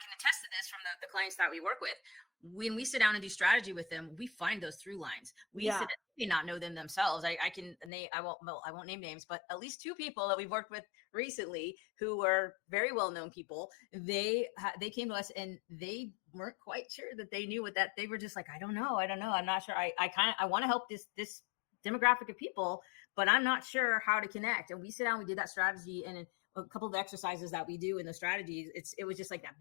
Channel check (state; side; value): drops out; right; at 7.9 s